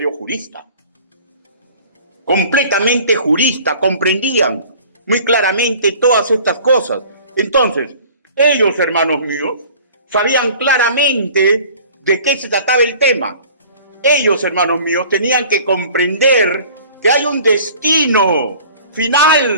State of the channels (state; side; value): inverted; both; correlation -0.48